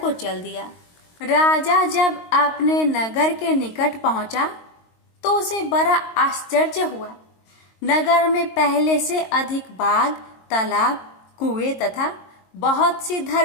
चल दिया। राजा जब अपने नगर के निकट पहुंचा तो उसे बड़ा आश्चर्य हुआ। नगर में पहले से अधिक बाग, तालाब, कुएं तथा बहुत सी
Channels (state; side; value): late; right; 22 ms